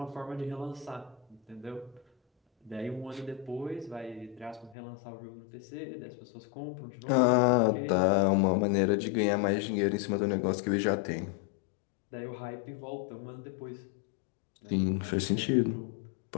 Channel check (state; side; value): drops out; right; at 4.8 s